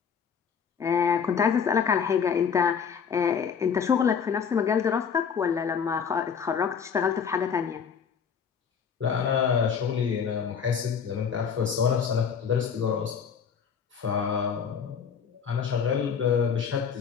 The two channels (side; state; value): right; quieter; 6.9 dB